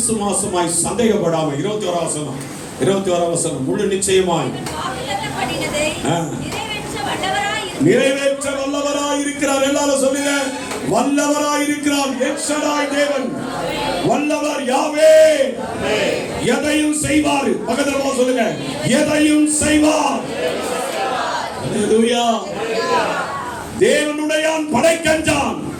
சந்தேகப்படாம 21 வசனம் முழு நிச்சயமாய் நிறைவேற்ற வல்லவராய் இருக்கிறார். எல்லாரும் சொல்லுங்க, வல்லவராய் இருக்கிறார். எல்ஷடாய் தேவன் வல்லவர், யாவே எதையும் செய்வார். பக்கத்துல சொல்லுங்க, எதையும் செய்வார். ஹல்லேலூயா. தேவனுடையான் படைக்கஞ்சான்.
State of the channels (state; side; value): identical; both; correlation 1.00